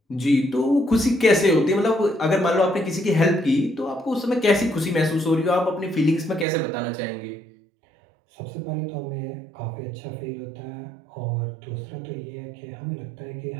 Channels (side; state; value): left; drops out; at 6.5 s